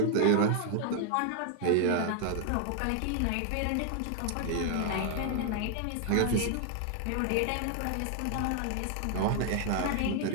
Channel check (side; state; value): both; different; correlation 0.00